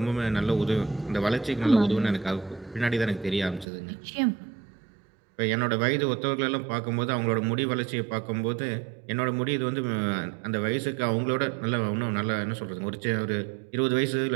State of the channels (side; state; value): left; drops out; at 3.7 s